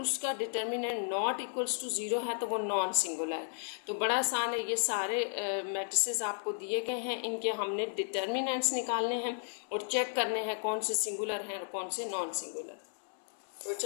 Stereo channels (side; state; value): right; silent; 55 dB below the other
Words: डिटर्मिनेंट नॉट इक्वल्स टू 0 है तो वो नॉन सिंगुलर है। तो बड़ा आसान है, ये सारे मैट्रिसेस आपको दिए गए हैं, इनके हमने डिटर्मिनेंट्स निकालने हैं और चेक करने हैं कौन से सिंगुलर हैं और कौन से नॉन सिंगुलर। तो